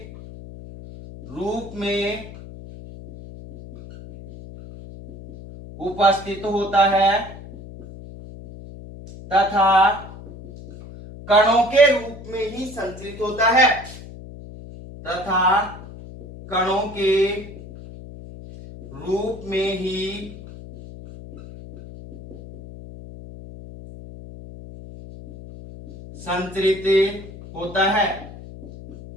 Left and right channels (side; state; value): left; noise; hum, 15 dB below the sound